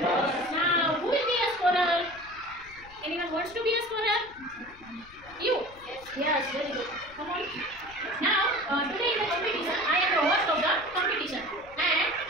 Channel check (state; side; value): noise; left; rumble, 24 dB below the sound